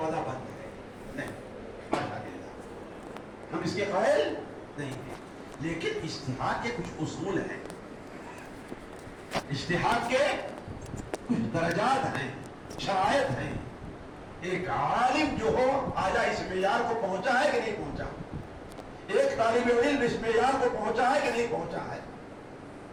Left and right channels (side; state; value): both; identical; correlation 1.00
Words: بند ہے، نہیں، ہم اس کے قائل نہیں ہیں، لیکن اجتہاد کے کچھ اصول ہیں، اجتہاد کے کچھ درجات ہیں، شرائط ہیں. ایک عالم جو ہو آیا اس معیار کو پہنچا ہے کہ نہیں پہنچا، ایک طالب علم اس معیار کو پہنچا ہے کہ نہیں پہنچا ہے.